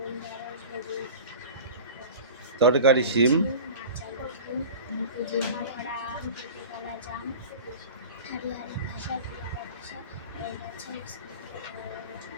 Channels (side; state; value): both; inverted; correlation -0.36